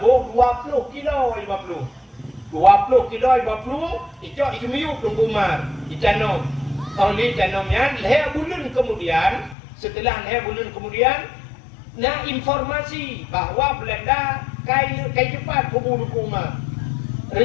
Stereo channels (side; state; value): right; drops out; at 9.6 s